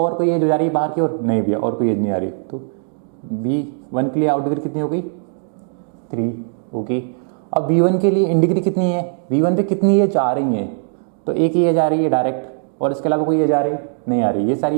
कोई एज जा रही है बाहर की ओर? नहीं भैया, और कोई एज नहीं आ रही। तो V1 के लिए आउट डिग्री कितनी हो गई? 3। ओके, अब V1 के लिए इन डिग्री कितनी है? V1 पे कितनी एज आ रही है? तो एक ही एज आ रही है डायरेक्ट, और इसके अलावा कोई एज आ रही नहीं आ रही। ये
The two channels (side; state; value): left; silent; digital silence